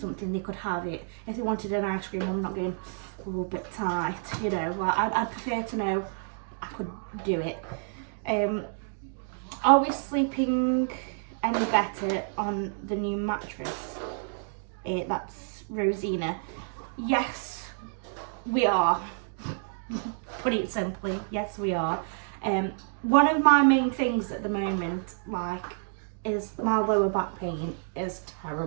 they could have it. If they wanted an ice cream, I'm not going, oh, a bit tight, you know. Like, I'd prefer to know I could do it. Are we sleeping any better on the new mattress? That's Rosina. Yes, we are. Put it simply, yes, we are. One of my main things at the moment, like, is my lower back pain is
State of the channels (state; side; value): silent; left; digital silence